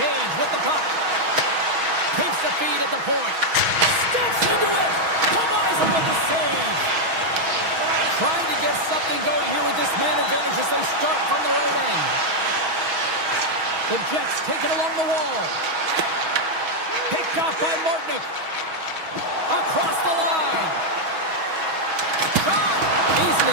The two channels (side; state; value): left; late; 6.2 ms